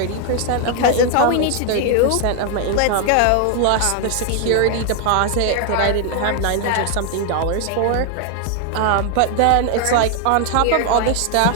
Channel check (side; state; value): both; different; correlation 0.00